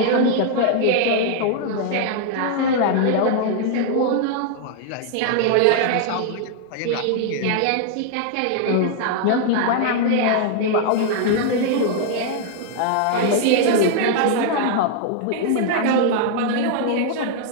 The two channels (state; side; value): different; both; correlation 0.00